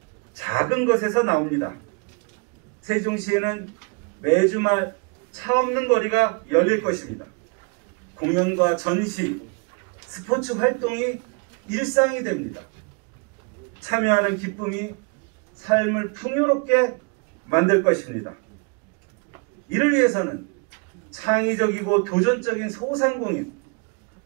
작은 것에서 나옵니다. 세종시에는 매주말 차 없는 거리가 열릴 것입니다. 공연과 전시, 스포츠 활동이 일상이 됩니다. 참여하는 기쁨이 삶을 풍요롭게 만들 것입니다. 이를 위해서는 창의적이고 도전적인 소상공인,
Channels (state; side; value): quieter; left; 33.4 dB